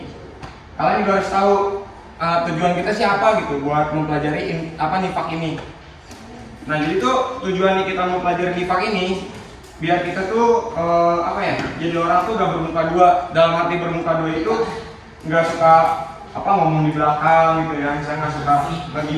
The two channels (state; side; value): identical; both; correlation 1.00